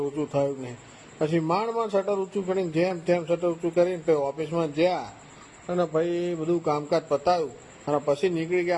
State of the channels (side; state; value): both; identical; correlation 1.00